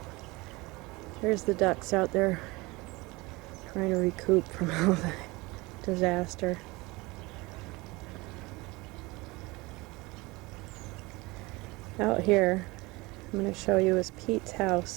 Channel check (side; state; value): left; quieter; 23.1 dB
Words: There's the ducks out there trying to recoup from all the disaster. Out here, I'm going to show you is Pete's